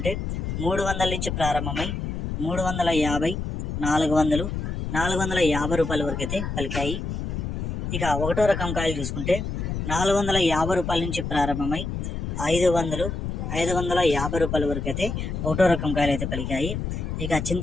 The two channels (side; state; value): left; noise; rumble, 4 dB below the sound